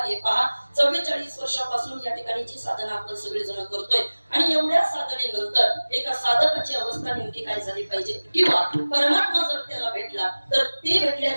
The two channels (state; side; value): inverted; both; correlation -1.00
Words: हे पहा, 44 वर्षापासून या ठिकाणी जी साधना आपण सगळेजण करतोय आणि एवढ्या साधनेनंतर एका साधकाची अवस्था नेमकी काय झाली पाहिजे, किंवा परमात्मा जर त्याला भेटला तर ते